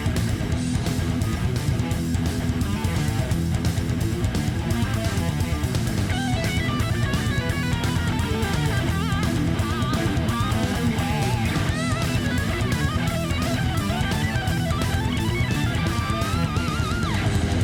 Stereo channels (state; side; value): identical; both; correlation 1.00